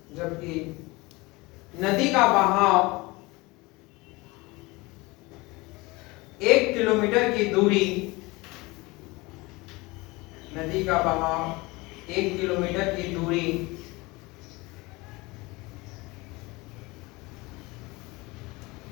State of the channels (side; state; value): right; quieter; 23.3 dB